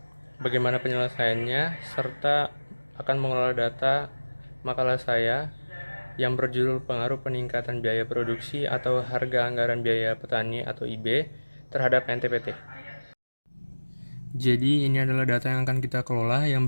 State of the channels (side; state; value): both; inverted; correlation -1.00